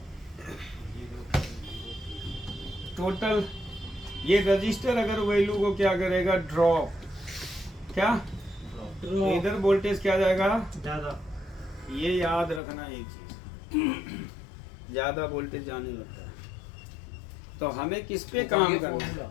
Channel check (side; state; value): right; drops out; at 12.6 s